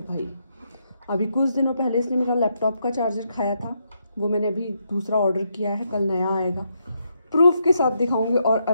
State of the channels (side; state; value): both; inverted; correlation -0.79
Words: भाई। अभी कुछ दिनों पहले इसने मेरा लैपटॉप का चार्जर खाया था, वो मैंने अभी दूसरा ऑर्डर किया है, कल नया आएगा, प्रूफ के साथ दिखाऊंगी। और